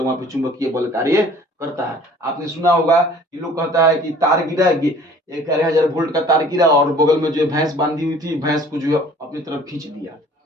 वहां पे चुंबकीय बल कार्य करता है। आपने सुना होगा कि लोग कहता है कि तार गिरा, 11,000 वोल्ट का तार गिरा और बगल में जो है भैंस बांधी हुई थी, भैंस को जो है अपनी तरफ खींच दिया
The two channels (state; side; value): normal; both; correlation 0.51